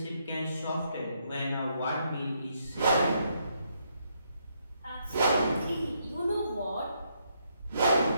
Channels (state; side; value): inverted; both; correlation -0.75